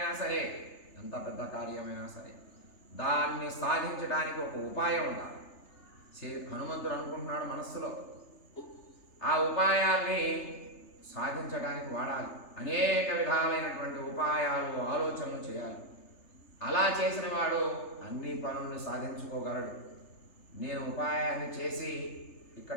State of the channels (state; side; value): late; right; 3.3 ms